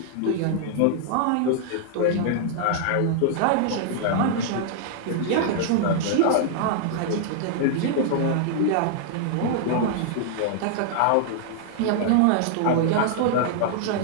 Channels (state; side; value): different; both; correlation -0.01